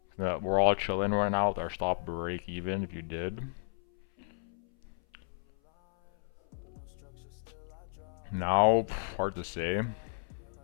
We're all chilling right now with our stop break even, if you did. Now, hard to say.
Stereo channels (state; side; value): silent; right; 56 dB below the other